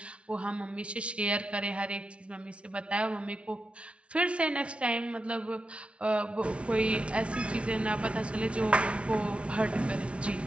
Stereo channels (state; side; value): late; left; 0.060 ms